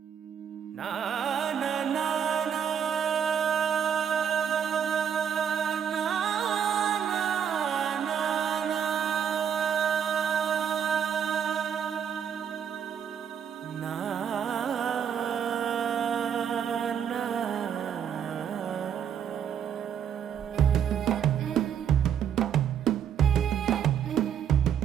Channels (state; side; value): quieter; left; 8.3 dB